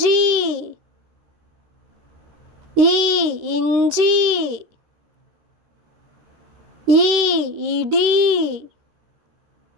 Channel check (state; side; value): late; left; 13 ms